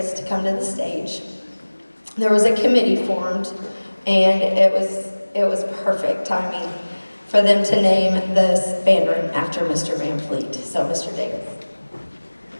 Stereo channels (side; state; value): both; inverted; correlation -1.00